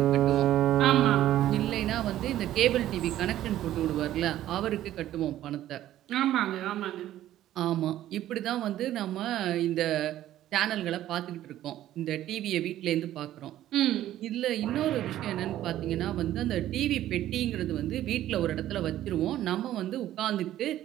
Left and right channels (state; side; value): quieter; left; 13.1 dB